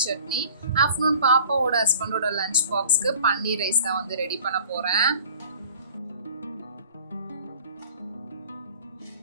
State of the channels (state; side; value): inverted; both; correlation -0.48